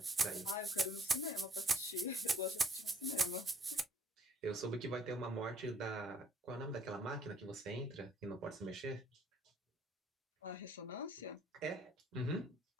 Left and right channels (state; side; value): normal; both; correlation 0.63